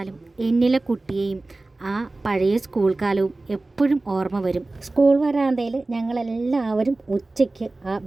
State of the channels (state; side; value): quieter; left; 3.1 dB